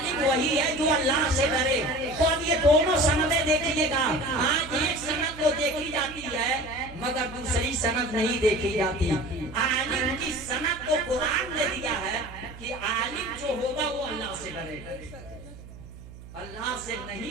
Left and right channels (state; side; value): noise; right; hum, 16 dB below the sound